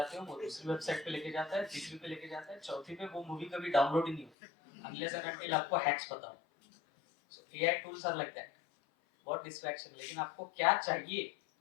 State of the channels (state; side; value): drops out; right; at 4.3 s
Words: हो, वो दूसरी वेबसाइट पे लेके जाता है, तीसरी पे लेके जाता है, चौथी पे वो मूवी कभी डाउनलोड ही नहीं होती अनलेस एंड अनटिल आपको हैक्स पता हो. So AI tools are like that. बहुत डिस्ट्रैक्शन. लेकिन आपको क्या चाहिए